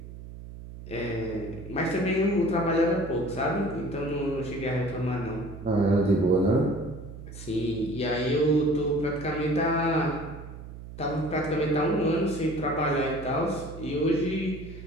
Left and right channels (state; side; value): noise; right; hum, 13 dB below the sound